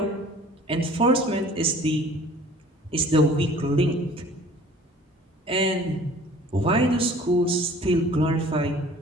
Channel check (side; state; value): both; normal; correlation 0.49